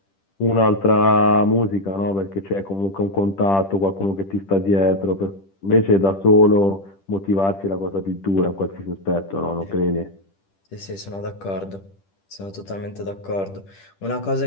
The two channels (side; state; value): right; late; 10 ms